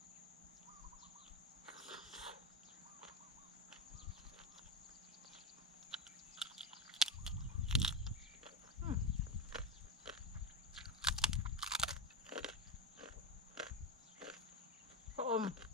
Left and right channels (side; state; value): both; normal; correlation 0.16